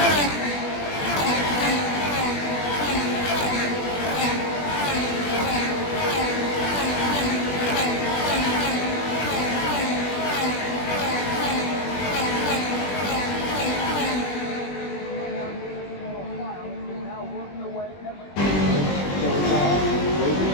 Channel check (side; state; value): right; late; 20 ms